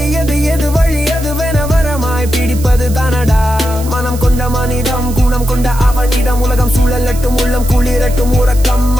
எது வழி எதுவென வரமாய் பிடிப்பது தானடா மனம் கொண்ட மனிதம் குணம் கொண்ட அவனிடம் உலகம் சூழலட்டும் உள்ளம் குளிரட்டும் உறக்கம்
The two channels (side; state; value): right; noise; hiss, 15 dB below the sound